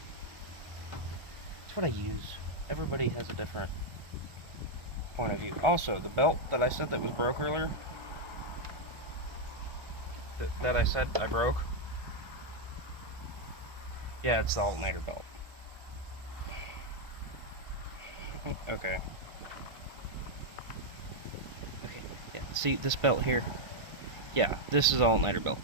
It's what I use. Everybody has a different point of view. Also, the belt that I said that was broke earlier, that I said I broke, yeah, it's the alternator belt. Okay. Okay, yeah, see this belt here? Yeah, this is alternator belt.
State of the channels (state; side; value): late; left; 1.5 ms